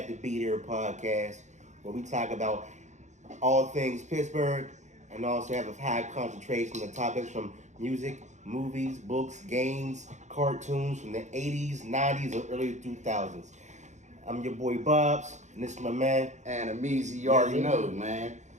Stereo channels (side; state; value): left; late; 0.34 ms